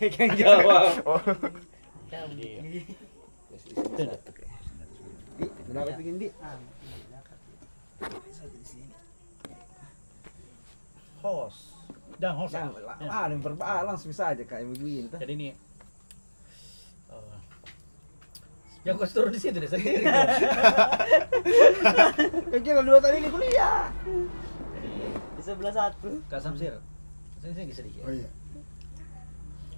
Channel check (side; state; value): both; inverted; correlation -1.00